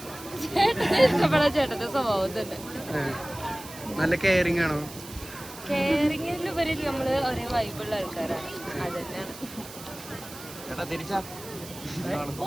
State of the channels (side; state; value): right; noise; hiss, 15 dB below the sound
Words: ഇഷ്ടപ്പെടാൻ ചേട്ടന്റെ സ്വഭാവം തന്നെ. നല്ല കെയറിംഗ് ആണോ? കെയറിംഗിലുപരി നമ്മള് ഒരേ വൈബുള്ള ആൾക്കാരാണ്, അത് തന്നെയാണ്. ഓ